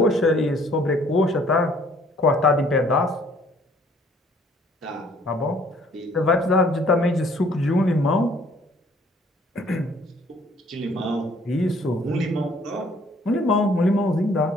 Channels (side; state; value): both; normal; correlation 0.60